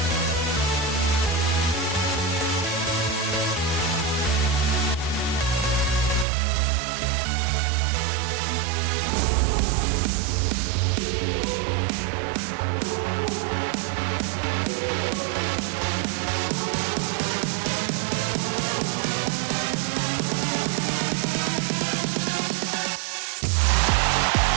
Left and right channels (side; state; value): left; drops out; at 6.2 s